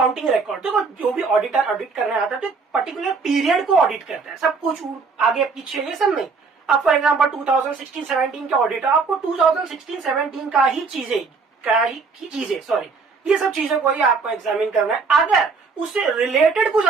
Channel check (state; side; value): quieter; left; 4.7 dB